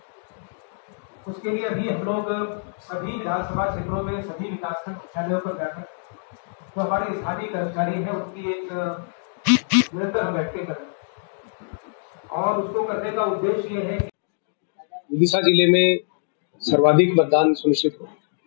उसके लिए अभी हम लोग सभी विधानसभा क्षेत्रों में सभी विकासखंड मुख्यालयों पर जाकर जो हमारे स्थानीय कर्मचारी हैं उनकी एक निरंतर हम बैठकें कर रहे हैं और उसको करने का उद्देश्य ये है कि विदिशा जिले में सर्वाधिक मतदान सुनिश्चित हो,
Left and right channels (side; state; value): right; silent; digital silence